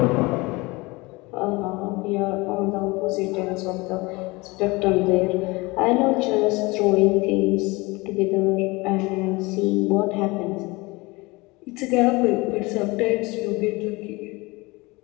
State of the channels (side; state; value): right; quieter; 23.9 dB